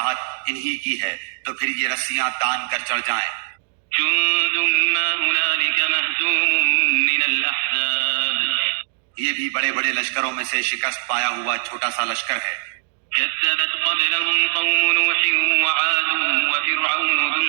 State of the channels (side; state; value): left; silent; digital silence